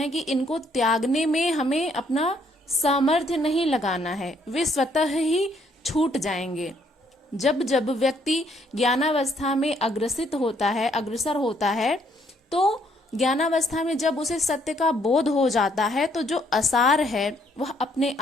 कि इनको त्यागने में हमें अपना सामर्थ्य नहीं लगाना है, वे स्वतः ही छूट जाएंगे। जब जब व्यक्ति ज्ञानावस्था में अग्रसर होता है, तो ज्ञानावस्था में जब उसे सत्य का बोध हो जाता है तो जो असार है वह अपने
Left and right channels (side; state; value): both; normal; correlation 0.68